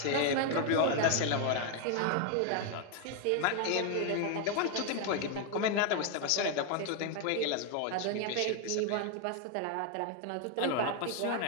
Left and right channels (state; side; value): different; both; correlation 0.01